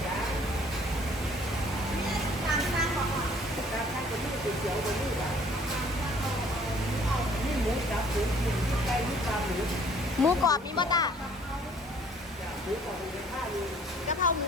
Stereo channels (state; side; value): normal; both; correlation 0.57